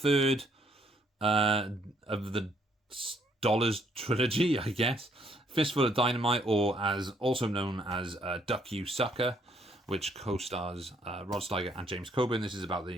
of the Dollars trilogy, I guess. Fistful of Dynamite, or as also known as Duck You Sucker, which co-stars Rod Steiger and James Coburn. This is about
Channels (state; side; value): normal; both; correlation 0.68